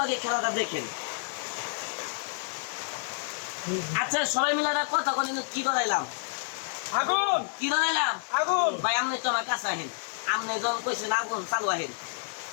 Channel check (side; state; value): right; silent; 58 dB below the other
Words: আগে খেলাটা দেখেন। আচ্ছা সবাই মিলে একটা কথা বলেন, কি ধরাইলাম? আগুন কি ধরাইলাম? আগুন। ভাই আপনি তো আমার কাছে আহেন। আপনি যখন কইছেন আগুন চালু আহেন,